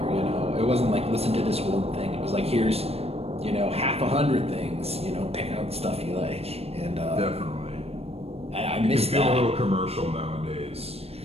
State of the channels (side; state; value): left; late; 0.29 ms